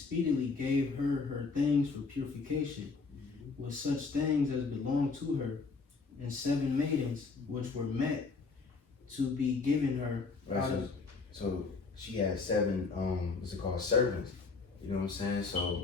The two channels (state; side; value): quieter; right; 4.4 dB